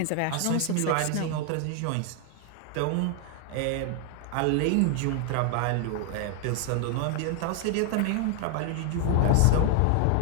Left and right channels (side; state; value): both; different; correlation 0.00